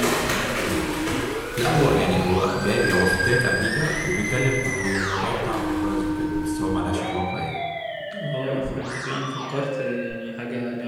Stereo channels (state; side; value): identical; both; correlation 1.00